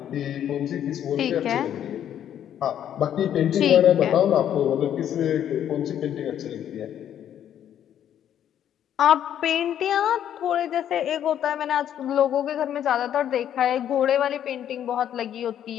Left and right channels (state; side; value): quieter; right; 10.2 dB